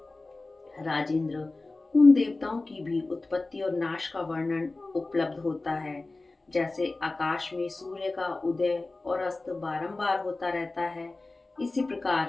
राजेंद्र, उन देवताओं की भी उत्पत्ति और नाश का वर्णन उपलब्ध होता है। जैसे आकाश में सूर्य का उदय और अस्त बारंबार होता रहता है, इसी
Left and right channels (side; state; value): right; quieter; 3.3 dB